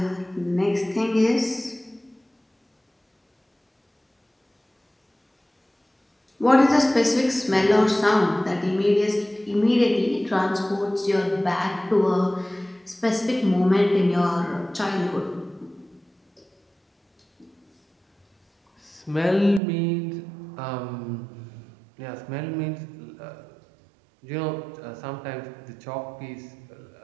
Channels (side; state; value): left; drops out; at 19.6 s